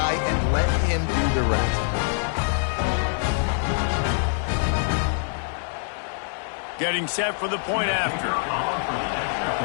and let him do the rest. Getting set for the point after.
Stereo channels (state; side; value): silent; right; digital silence